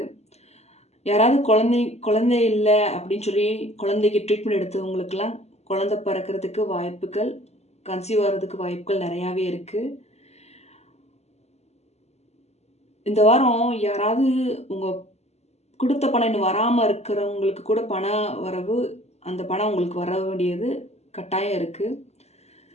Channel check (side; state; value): right; late; 0.31 ms